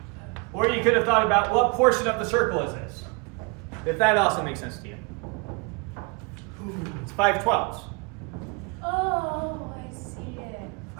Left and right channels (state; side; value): quieter; left; 30.6 dB